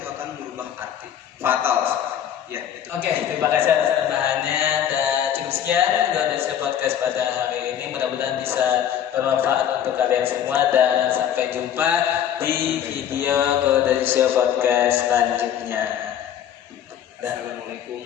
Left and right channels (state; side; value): quieter; right; 9.8 dB